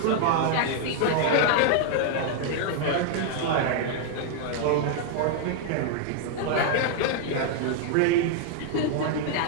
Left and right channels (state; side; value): different; both; correlation 0.00